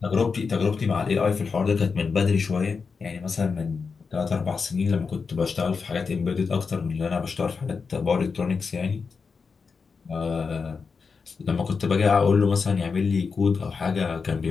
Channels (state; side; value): quieter; right; 5.2 dB